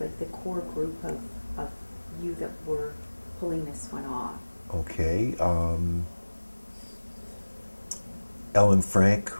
the core group of you that were pulling this one off? Okay. Ellen Frank,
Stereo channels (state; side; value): inverted; both; correlation -1.00